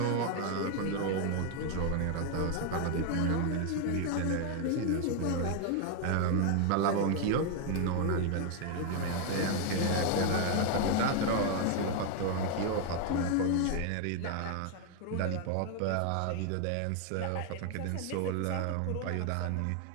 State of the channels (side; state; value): both; different; correlation 0.01